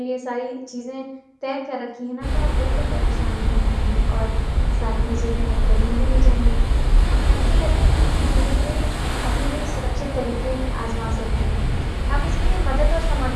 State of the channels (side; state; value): both; identical; correlation 1.00